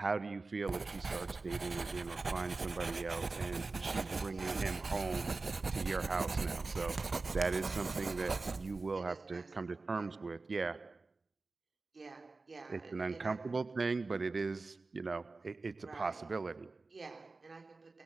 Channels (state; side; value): quieter; left; 3.7 dB